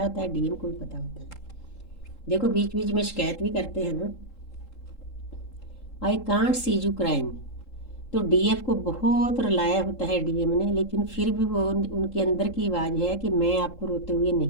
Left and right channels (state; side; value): late; right; 3.8 ms